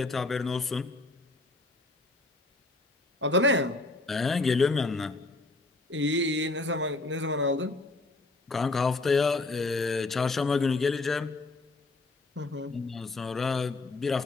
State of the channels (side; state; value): right; quieter; 3.2 dB